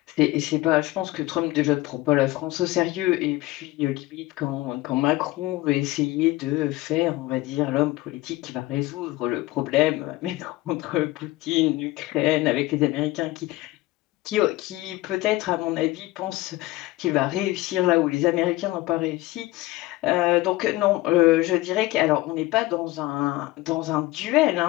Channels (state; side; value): quieter; right; 18.7 dB